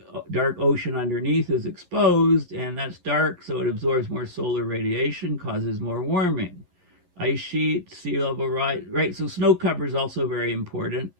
dark ocean underneath is exposed, and that's dark, so it absorbs more solar radiation, causes more warming. Ice sheet, sea level rise, right? So snow cover is also very important.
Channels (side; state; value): left; late; 11 ms